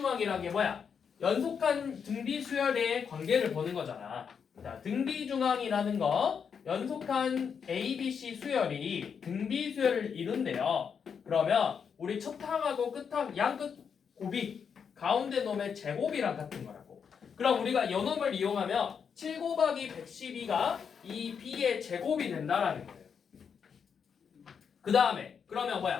게 뭐야? 연속한 등비수열의 관계를 보는 거잖아. 자, 등비중항이라는 거 연속한 A, B, C 수열이 등비수열을 이룬대요. 그러면 우리 첫 항하고 끝항 양끝 곱이 가운데 놈의 제곱이랑 같은 거라고. 그럼 우리가 요놈을 이용하면 7 곱하기 112가 이 B의 제곱이 된다라는 거예요. 그 다음에 그러면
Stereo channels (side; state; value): right; quieter; 6.8 dB